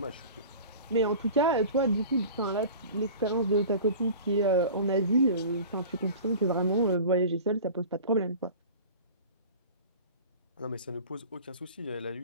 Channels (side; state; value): both; inverted; correlation -0.39